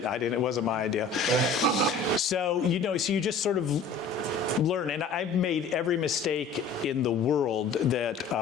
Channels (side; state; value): right; quieter; 4.5 dB